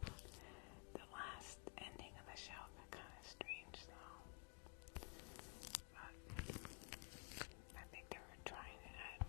The last ending of the show got kind of strange though. But I think they were trying to add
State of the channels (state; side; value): quieter; right; 32.5 dB